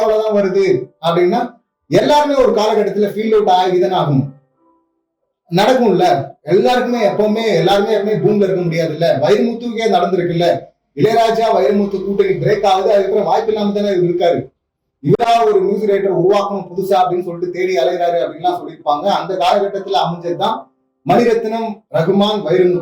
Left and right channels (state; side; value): identical; both; correlation 1.00